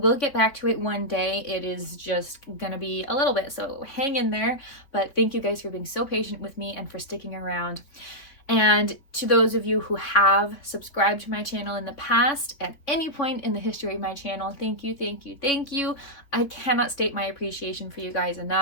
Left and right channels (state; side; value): late; right; 3.9 ms